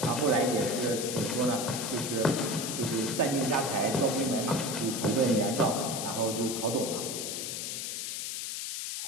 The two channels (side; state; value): left; noise; hiss, 4 dB below the sound